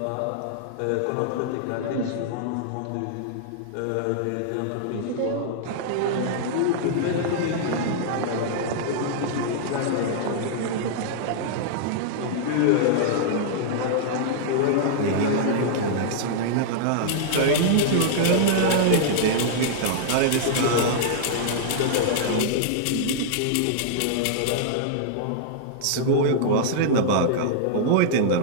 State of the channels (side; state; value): both; different; correlation -0.02